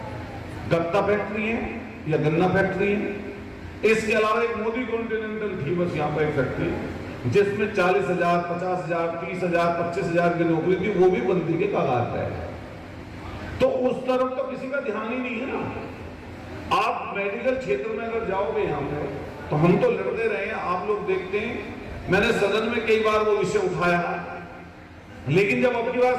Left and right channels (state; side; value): identical; both; correlation 1.00